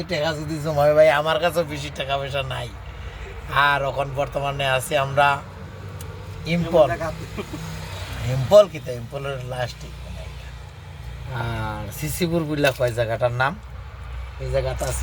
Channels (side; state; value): both; identical; correlation 1.00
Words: টাকা যদি জমাই ভাই, আমার কাছেও বেশি টাকা পয়সা নাই। আর এখন বর্তমানে আছি আমরা ইম্পল কিতা ইম্পলের লাস্টিক। আর সিসিপুর বুঝলা কয় জায়গাটার নাম, এই জায়গাটা